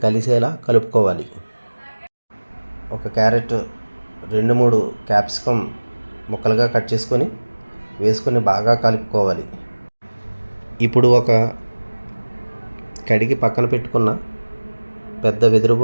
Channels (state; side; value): inverted; both; correlation -1.00